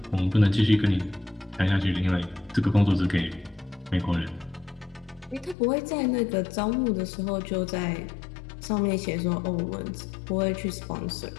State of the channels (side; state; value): right; drops out; at 5.6 s